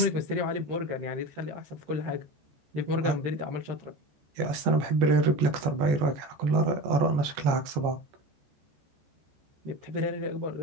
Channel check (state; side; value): late; left; 14 ms